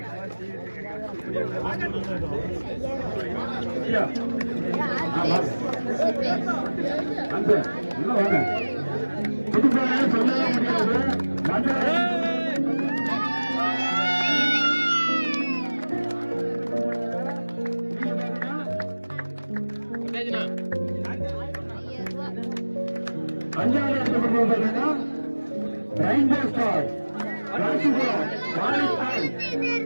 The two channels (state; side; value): inverted; both; correlation -1.00